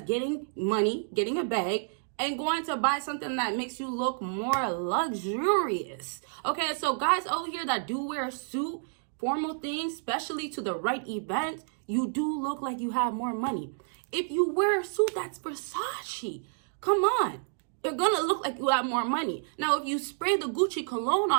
getting money, getting a bag, and going to buy something that makes you look more luxurious. Okay, so guys over here that do wear a suit, formal things, especially to the right event, you do look like you have more money. If you wear a suit that's Versace, come on, you're gonna look like you have more money. Now, if you spray the Gucci cologne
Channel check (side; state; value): left; silent; digital silence